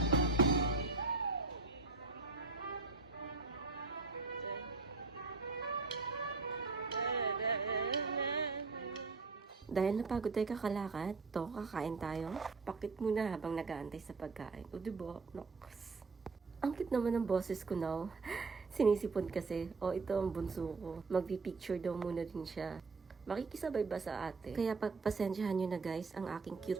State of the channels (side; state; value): left; quieter; 4.0 dB